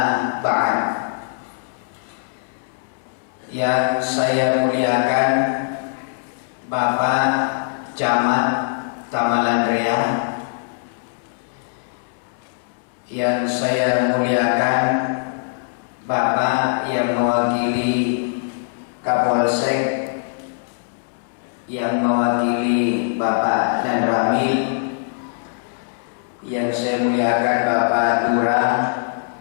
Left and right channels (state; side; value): silent; right; digital silence